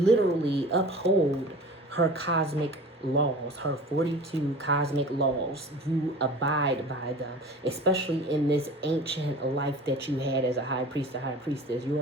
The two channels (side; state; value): both; normal; correlation 0.39